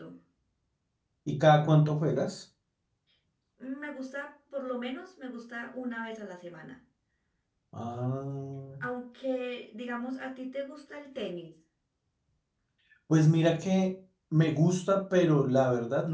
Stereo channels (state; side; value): identical; both; correlation 1.00